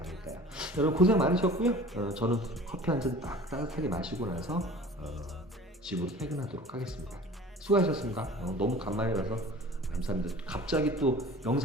여러분 고생 많으셨고요. 저는 커피 한 잔 딱 따뜻하게 마시고 나서 집으로 퇴근하도록 하겠습니다. 수고하셨습니다. 너무 간만이라서 감사합니다. 갑자기 또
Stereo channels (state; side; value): normal; both; correlation 0.43